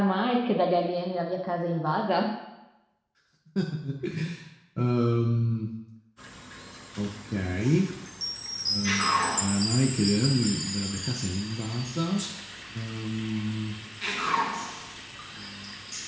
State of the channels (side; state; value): both; identical; correlation 1.00